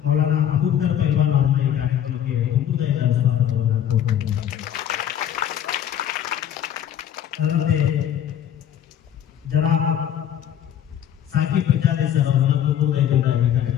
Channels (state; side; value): quieter; right; 10.2 dB